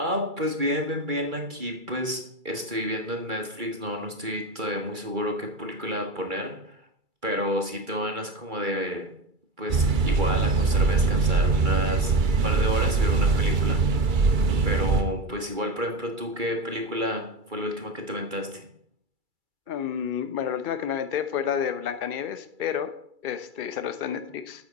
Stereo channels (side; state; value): left; late; 2.3 ms